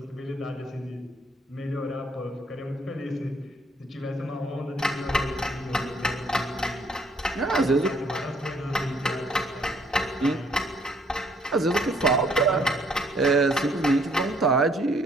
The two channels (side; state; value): both; normal; correlation 0.65